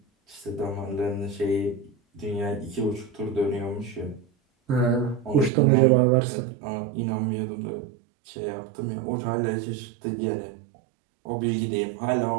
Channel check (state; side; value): drops out; left; at 5.5 s